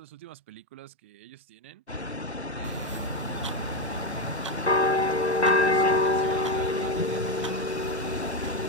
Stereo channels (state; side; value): normal; both; correlation 0.10